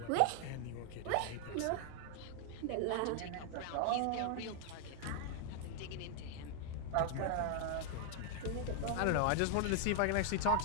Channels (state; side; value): different; both; correlation 0.00